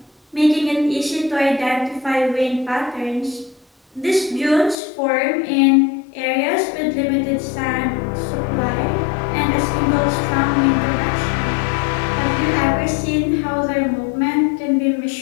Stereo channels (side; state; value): right; drops out; at 4.8 s